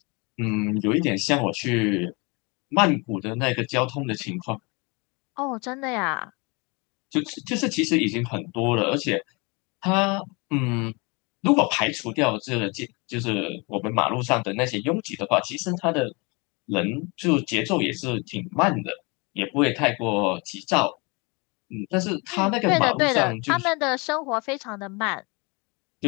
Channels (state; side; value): quieter; right; 29.1 dB